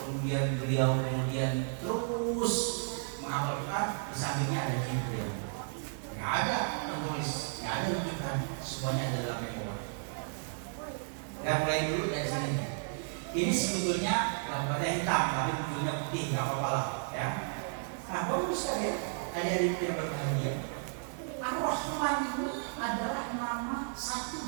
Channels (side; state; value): left; silent; digital silence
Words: beliau terus menghafalkan, di sampingnya ada Jibril. Nggak ada penulis, nggak ada rujukan, semuanya ada dalam memori. Kita mulai dulu dari sini. Ini sebetulnya gambarnya hitam, tapi ujungnya putih, nggak apa-apa lah, ya. Nah, kalau bisa ya, adik-adik yang berbahagia. Ar-Rahman ini adalah nama satu